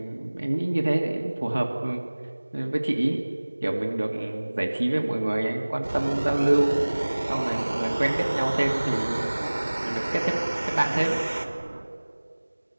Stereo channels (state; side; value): inverted; both; correlation -1.00